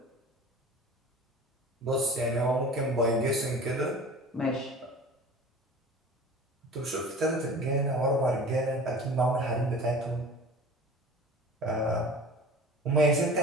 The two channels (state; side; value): normal; both; correlation 0.40